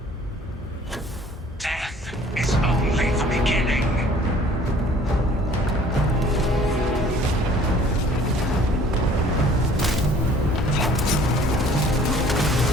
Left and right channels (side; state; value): both; normal; correlation 0.53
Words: Death is only the beginning.